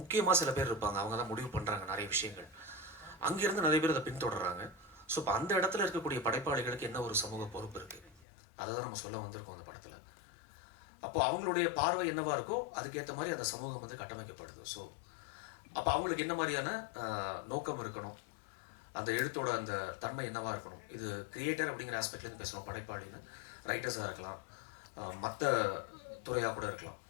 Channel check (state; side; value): drops out; right; at 8.2 s